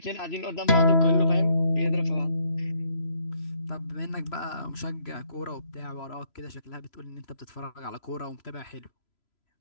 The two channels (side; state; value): right; late; 3.0 ms